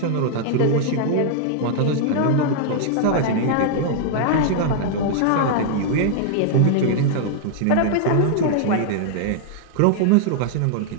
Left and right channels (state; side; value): different; both; correlation -0.01